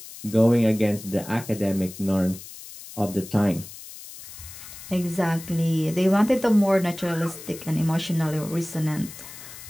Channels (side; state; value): left; noise; hiss, 15 dB below the sound